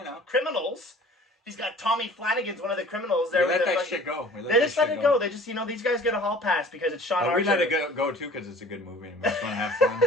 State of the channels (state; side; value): normal; both; correlation 0.47